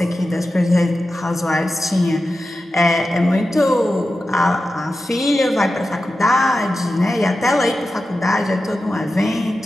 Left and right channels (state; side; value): normal; both; correlation 0.92